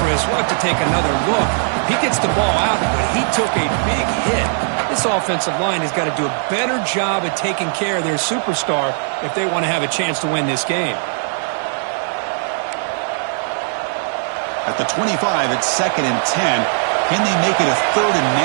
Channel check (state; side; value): silent; left; digital silence